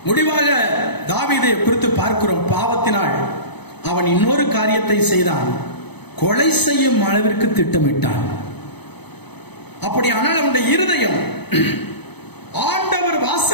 முடிவாக தாவீதை குறித்து பார்க்கிறோம். பாவத்தினால் அவன் இன்னொரு காரியத்தை செய்தான், கொலை செய்யும் அளவிற்கு திட்டமிட்டான். அப்படியானால் அவனுடைய இருதயம், ஆண்டவர்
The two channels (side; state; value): right; late; 0.99 ms